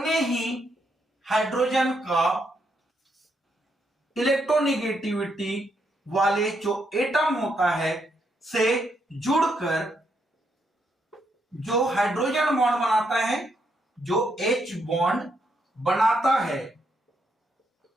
ही हाइड्रोजन का इलेक्ट्रोनेगेटिविटी वाले जो एटम होता है से जुड़कर जो हाइड्रोजन बॉन्ड बनाता है, जो H बॉन्ड बनाता है,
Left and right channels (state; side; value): normal; both; correlation 0.78